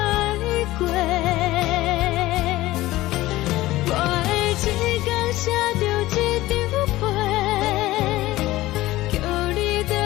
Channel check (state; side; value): quieter; right; 17.3 dB